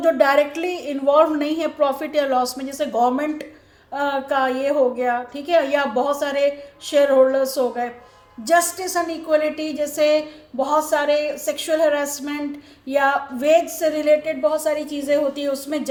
जो डायरेक्टली इन्वॉल्व नहीं है प्रॉफिट या लॉस में, जैसे गवर्नमेंट का ये हो गया, ठीक है, या बहुत सारे शेयर होल्डर्स हो गए. जस्टिस एंड इक्वलिटी, जैसे बहुत सारे सेक्सुअल हरासमेंट या वेज से रिलेटेड बहुत सारी चीज़ें होती है, उसमें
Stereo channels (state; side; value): identical; both; correlation 1.00